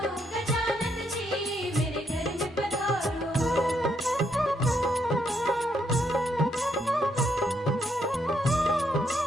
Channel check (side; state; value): both; normal; correlation 0.76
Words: गजानंद जी, मेरे घर में पधारो।